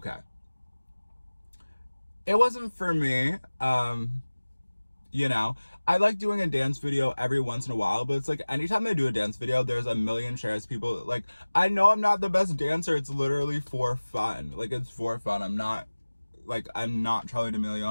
It wasn't for me. You know, I like doing a dance video every once in a while, but it's like anytime I do a dance video, there's a million shares. People like, I know I'm not the best dancer. It's literally for fun. Like, it's for fun. I'm not like, I'm not Charlie D'Amelio,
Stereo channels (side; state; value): both; inverted; correlation -1.00